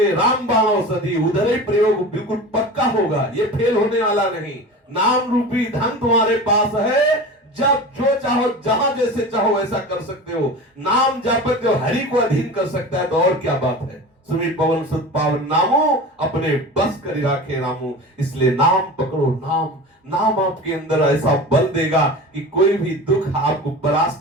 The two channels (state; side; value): normal; both; correlation 0.33